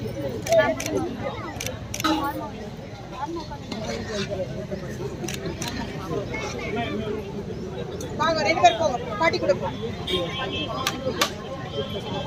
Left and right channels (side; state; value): both; identical; correlation 1.00